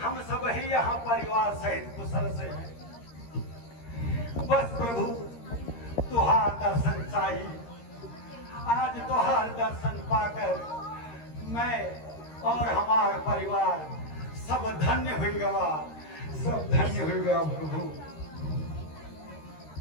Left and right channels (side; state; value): right; late; 13 ms